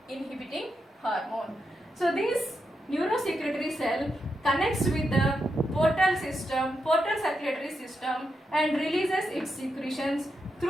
inhibiting hormone. So this neurosecretory cell connects with the portal circulatory system and releases its secretions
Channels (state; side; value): normal; both; correlation 0.85